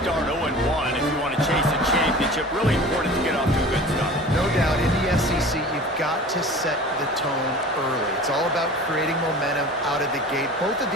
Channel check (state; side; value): normal; both; correlation 0.40